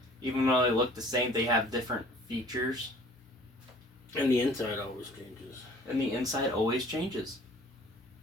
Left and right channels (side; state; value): both; normal; correlation 0.51